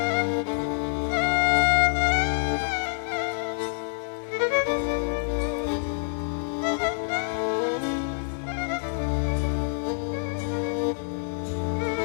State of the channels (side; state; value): right; silent; 60 dB below the other